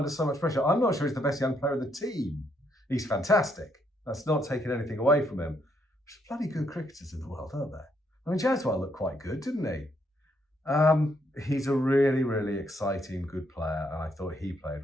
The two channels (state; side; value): normal; both; correlation 0.74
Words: so much pressure. I'm not sure he's the best young player in the team. He's fantastic. That's not taking anything away from him. There's bloody good cricketers in the world, aren't there? I mean, Jaswal looked quite good, didn't he? He's a really, really exciting, good player, and I thought he played